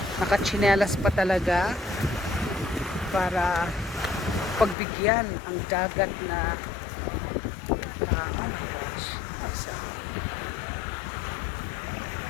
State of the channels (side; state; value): right; drops out; at 4.8 s